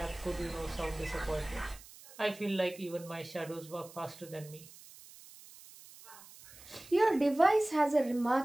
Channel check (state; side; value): noise; right; hiss, 20 dB below the sound